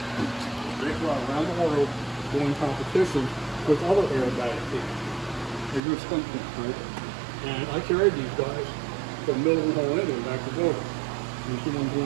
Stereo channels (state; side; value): drops out; left; at 5.8 s